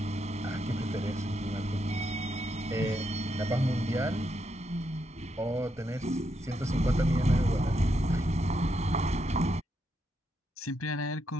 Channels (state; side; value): normal; both; correlation 0.81